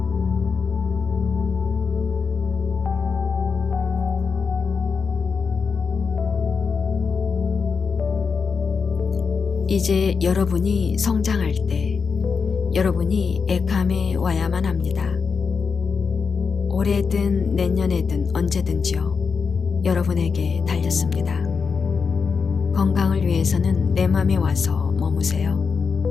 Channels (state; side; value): quieter; right; 5.5 dB